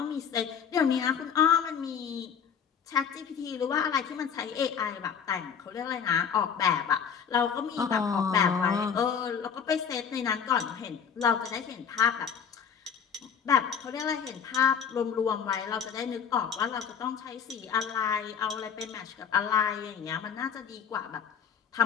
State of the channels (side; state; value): right; quieter; 7.3 dB